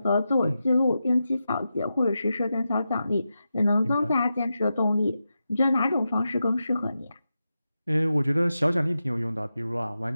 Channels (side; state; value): both; inverted; correlation -0.90